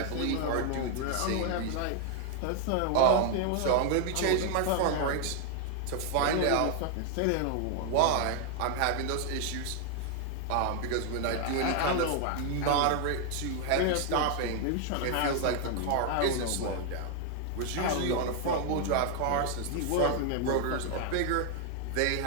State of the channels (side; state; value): both; different; correlation 0.00